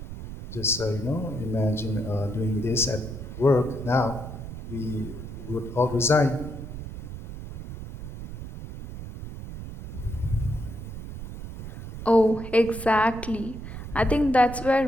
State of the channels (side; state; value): right; noise; rumble, 10 dB below the sound